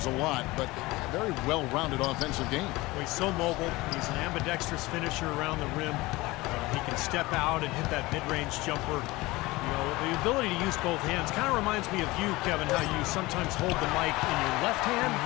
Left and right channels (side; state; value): right; quieter; 20.8 dB